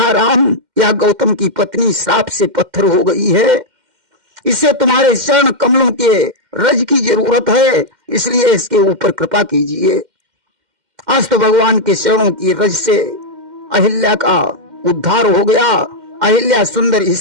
राम, यह गौतम की पत्नी श्राप से पत्थर हो गई है, इसे तुम्हारे चरण कमलों के रज की जरूरत है, इसलिए इसके ऊपर कृपा कीजिए। आज तो भगवान के चरणों की रज से अहिल्या का उद्धार हो गया। अहिल्या सुंदर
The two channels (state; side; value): late; left; 2.1 ms